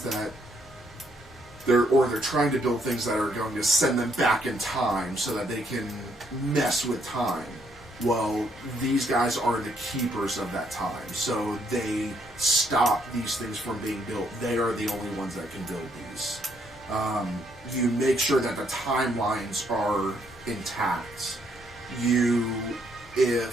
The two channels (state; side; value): normal; both; correlation 0.72